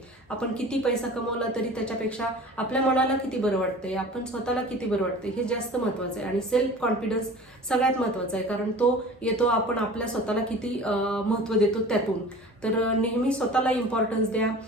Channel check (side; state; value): both; normal; correlation 0.40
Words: आपण किती पैसा कमवला तरी त्याच्यापेक्षा आपल्या मनाला किती बरं वाटतंय, आपण स्वतःला किती बरं वाटतंय हे जास्त महत्वाचं आहे. आणि सेल्फ कॉन्फिडन्स सगळ्यात महत्वाचा आहे, कारण तो येतो आपण आपल्या स्वतःला किती महत्व देतो त्यातून. तर नेहमी स्वतःला इम्पॉर्टन्स द्या,